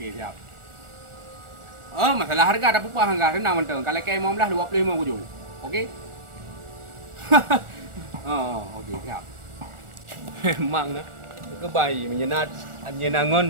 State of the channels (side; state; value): left; late; 1.4 ms